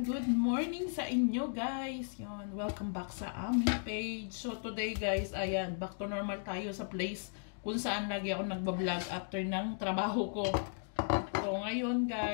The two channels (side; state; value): right; silent; digital silence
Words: good morning sa inyo guys. Yon, welcome back sa aming page. So today guys, ayan, back to normal tayo sa place kung saan lagi ako nagbablog after ng trabaho ko. So ngayon